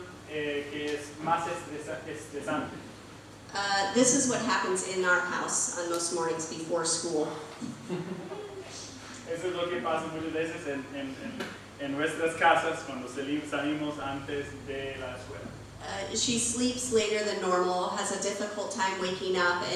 que es más estresante. This is what happens in our house on most mornings before school. Eso es lo que pasa muchas veces en nuestras casas cuando salimos antes de la escuela. She sleeps later than normal, has a difficult time waking up,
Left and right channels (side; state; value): both; identical; correlation 1.00